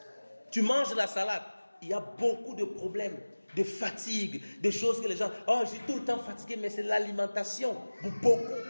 Tu manges la salade. Il y a beaucoup de problèmes, de fatigue, de choses que les gens... Oh, je suis tout le temps fatigué, mais c'est l'alimentation. Beaucoup,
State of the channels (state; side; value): inverted; both; correlation -1.00